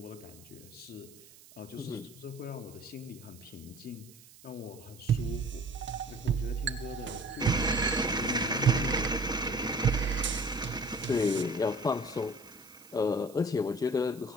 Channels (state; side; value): noise; right; hiss, 22 dB below the sound